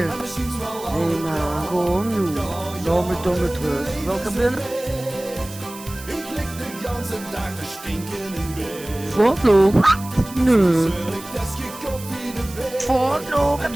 Hé man, gewoon nu. Laat me toch met rust. Welke binnen? Voortloop? Nee. Voortloop, heb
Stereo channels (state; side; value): noise; right; hiss, 16 dB below the sound